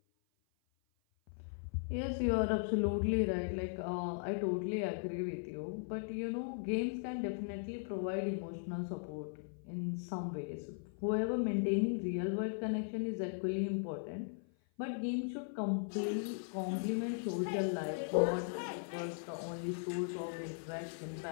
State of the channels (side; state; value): right; silent; 52 dB below the other